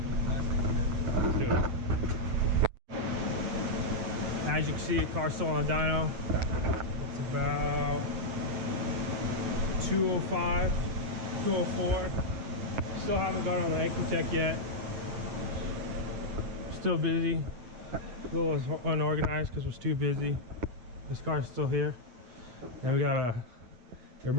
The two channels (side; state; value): left; late; 8.5 ms